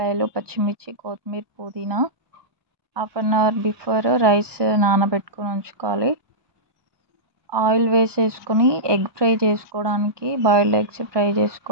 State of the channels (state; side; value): late; left; 1.2 ms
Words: పచ్చిమిర్చి, కొత్తిమీర, పుదీనా. Half an hour before rice నానబెట్టుకొని ఉంచుకోవాలి. ఆయిల్ వేసేసుకొని ఎగ్ ఫ్రై చేసుకోవడానికి, బాయిల్డ్ ఎగ్స్ ఫ్రై